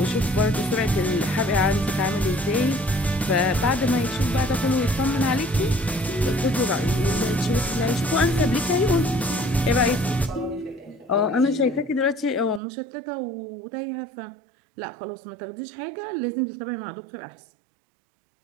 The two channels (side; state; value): left; drops out; at 12.6 s